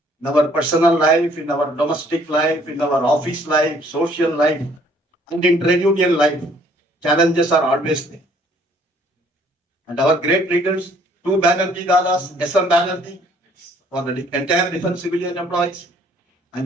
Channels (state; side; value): normal; both; correlation 0.61